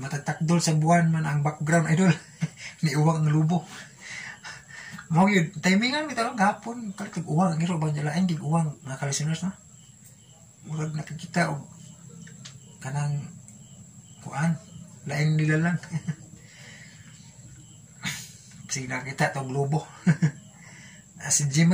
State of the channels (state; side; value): identical; both; correlation 1.00